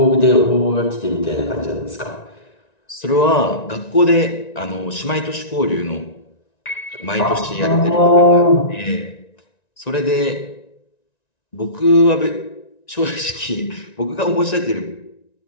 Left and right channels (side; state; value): right; late; 1.9 ms